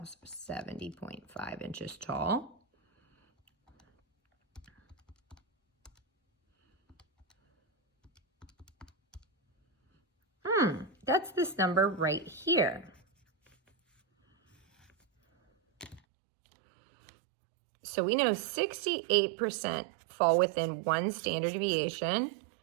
So 70.5 inches tall. That's this number right here. So we know 68% fall within 1 standard deviation,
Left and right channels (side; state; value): left; drops out; at 16.0 s